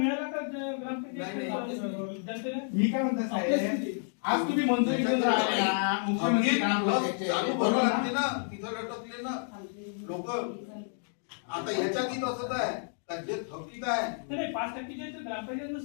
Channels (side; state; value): right; silent; 57 dB below the other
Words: का जनतेला? मी काय म्हणतो साहेब, आज तुम्ही मंजुरी घेऊन राहिले ना, मुख्यमंत्री चालू भरावं लागते ना, तिथं लटकले ना लोक. आता याच्यात असंच आहे का जे थकीत आहे नाही 5%ची ग्रामपंचायतनं